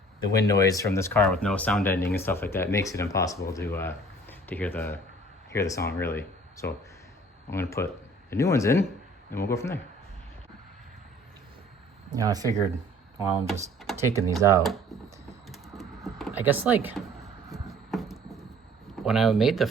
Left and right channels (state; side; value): normal; both; correlation 0.52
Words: the wind noise from this car with no sound ending and stuff like that makes it impossible to hear the song really. So I'm gonna put the new ones in and we'll go from there. Yeah, I figured while I'm just taking these out, I guess like when I made the